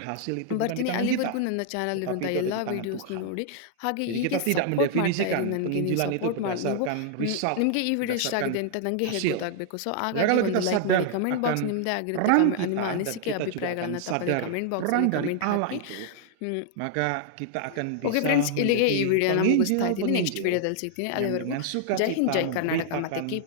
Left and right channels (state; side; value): different; both; correlation -0.01